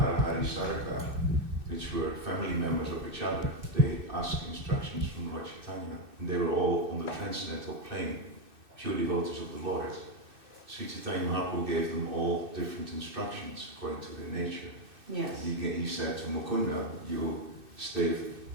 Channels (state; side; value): late; left; 2.6 ms